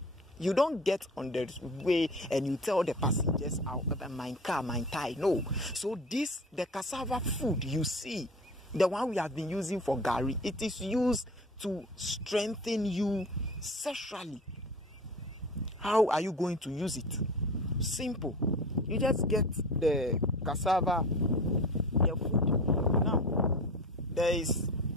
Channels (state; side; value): normal; both; correlation 0.35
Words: You don't get on the way and you tell the passengers, my car, my tie. No. So the cassava food you see, the one we have been using for gari, it is used to strengthen you sexually. How are you going to use it? Simple. You just get the cassava, the food. Now, there is